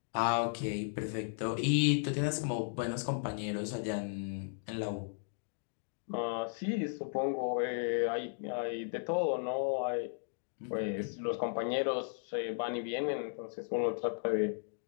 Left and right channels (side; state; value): right; silent; digital silence